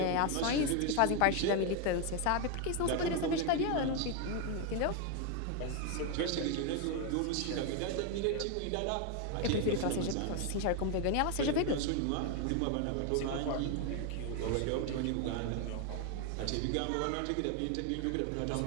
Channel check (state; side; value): different; both; correlation 0.01